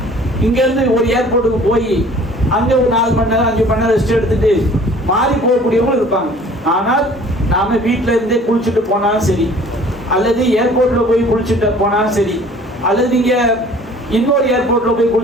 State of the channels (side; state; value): both; normal; correlation 0.51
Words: இங்க இருந்து ஒரு ஏர்போர்ட்டுக்கு போய் அங்க ஒரு 4 மணி நேரம் 5 மணி நேரம் ரெஸ்ட் எடுத்துட்டு மாறி போகக்கூடியவங்களும் இருப்பாங்க. ஆனால் நாம வீட்டுல இருந்தே குளிச்சுட்டு போனாலும் சரி, அல்லது ஏர்போர்ட்ல போய் குளிச்சுட்டு போனாலும் சரி, அல்லது நீங்க இன்னொரு ஏர்போர்ட்ல போய்